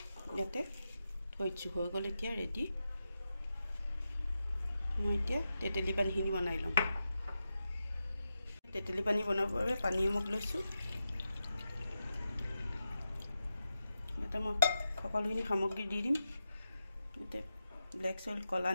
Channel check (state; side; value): inverted; both; correlation -0.89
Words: ইয়াতে থৈছোঁ, হৈ গ'ল এতিয়া ৰেডি। মই এতিয়া তেতেলী পানীখিনি বনাই ল'ম। তেতেলী পানী বনাবৰ বাবে পানী এমুক লৈছোঁ। ইয়াতে মই সকলোখিনি সামগ্ৰী দি দিম। ইয়াতে ব্লেক চল্ট, কলা